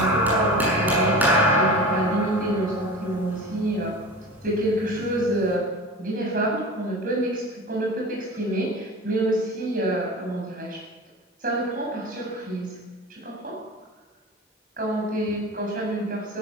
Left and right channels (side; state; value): both; normal; correlation 0.33